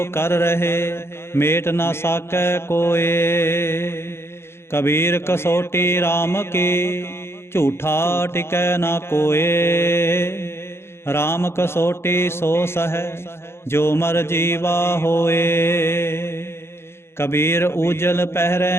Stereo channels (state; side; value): late; right; 0.12 ms